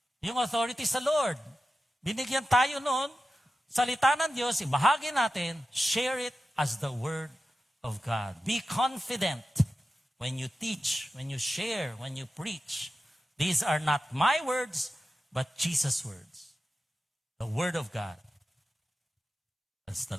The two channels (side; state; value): both; normal; correlation 0.92